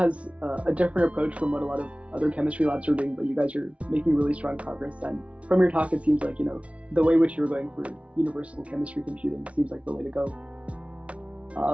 a different approach from what a lot of other chemistry labs are doing, but you guys are making really strong progress. And from your talk, it seems like, the way which you're going for universal chemistry computing seems like the way to go.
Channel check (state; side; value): late; left; 0.063 ms